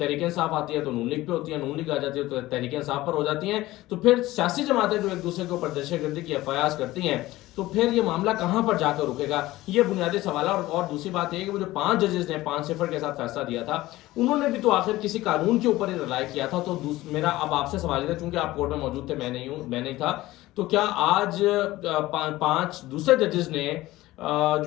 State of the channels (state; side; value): quieter; right; 17.5 dB